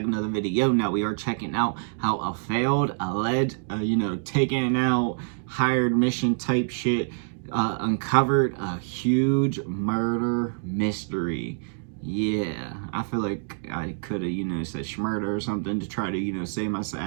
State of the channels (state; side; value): silent; left; digital silence